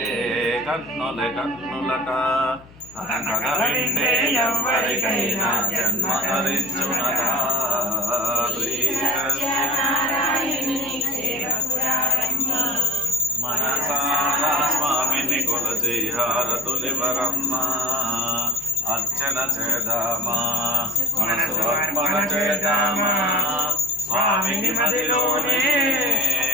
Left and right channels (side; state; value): left; noise; hum, 23 dB below the sound